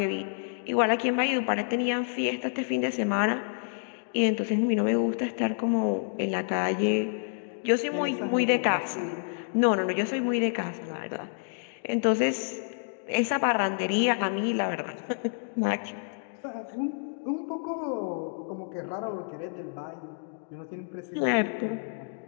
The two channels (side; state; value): right; silent; digital silence